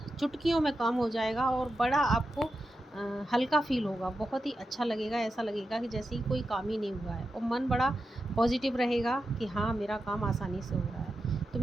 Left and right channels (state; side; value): normal; both; correlation 0.90